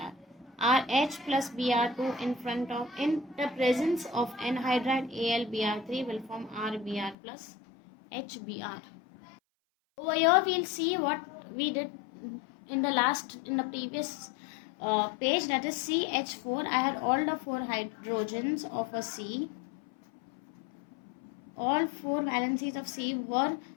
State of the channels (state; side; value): drops out; right; at 7.2 s